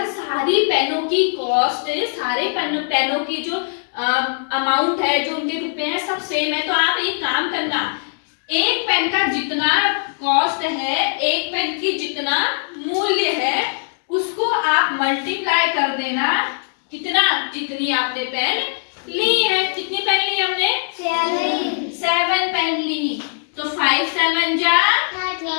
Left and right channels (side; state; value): right; silent; digital silence